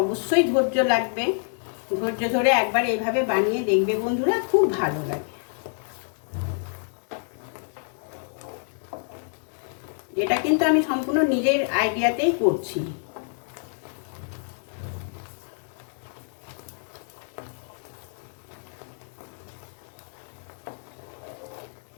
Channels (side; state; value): right; silent; 60 dB below the other